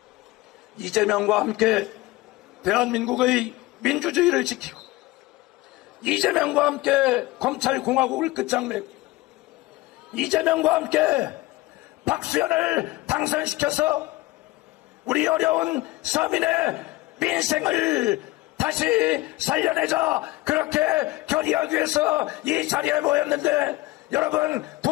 이재명과 함께 대한민국의 민주주의를 지키고 이재명과 함께 검찰공화국을 끝장내고 이재명과 함께 박수현을 당선시켜서 우리 어려운 서민의 민생을 다시 살려내자, 그렇게 결의하기 위해서 이 자리에 모였는데 여러분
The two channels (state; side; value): quieter; right; 19.5 dB